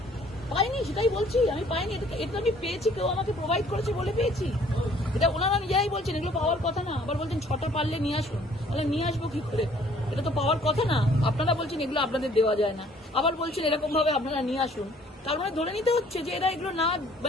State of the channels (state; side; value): normal; both; correlation 0.58